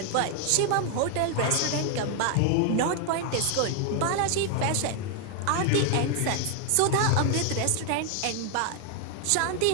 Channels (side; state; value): both; different; correlation 0.00